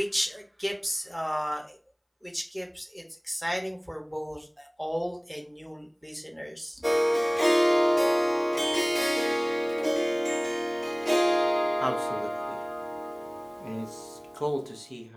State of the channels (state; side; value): identical; both; correlation 1.00